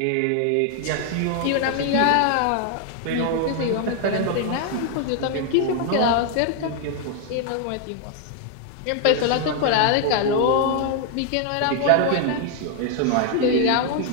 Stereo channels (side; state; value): both; different; correlation 0.00